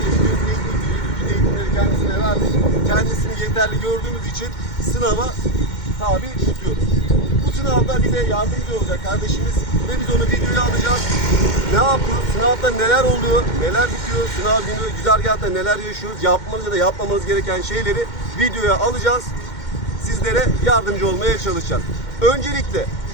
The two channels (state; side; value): late; right; 2.1 ms